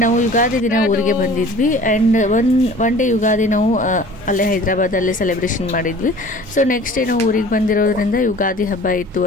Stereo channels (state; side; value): normal; both; correlation 0.46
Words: ನಾವು ಯುಗಾದಿ ದಿನ ಊರಿಗೆ ಬಂದಿದ್ವಿ. ಆ್ಯಂಡ್ ಒನ್ ಡೇ ಯುಗಾದಿ ನಾವು ಅಲ್ಲೇ ಹೈದರಾಬಾದಲ್ಲೇ ಸೆಲೆಬ್ರೇಷನ್ ಮಾಡಿದ್ವಿ. ಸೊ ನೆಕ್ಸ್ಟ್ ಡೇ ನಾವು ಊರಿಗೆ ಬಂದಿರೋದ್ರಿಂದ ಯುಗಾದಿ ಹಬ್ಬ ಇತ್ತು